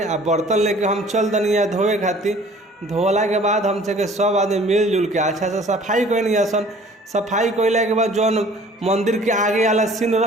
आ बर्तन लेके हम चल दनी धोए खातिर। धोला के बाद हम सब आदमी मिलजुल के अच्छा से सफाई कैनी आसन। सफाई कैला के बाद जौन मंदिर के आगे वाला सीन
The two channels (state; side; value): normal; both; correlation 0.51